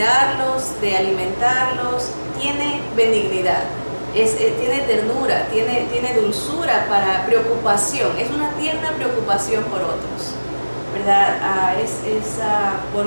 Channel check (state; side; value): inverted; both; correlation -1.00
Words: de alimentarlos, tiene benignidad, tiene ternura, tiene dulzura para preocupación, es una tierna preocupación por otros. ¿verdad? Es